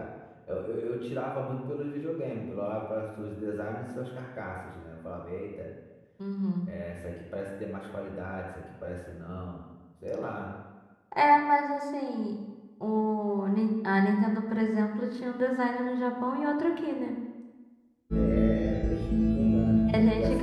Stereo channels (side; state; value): both; identical; correlation 1.00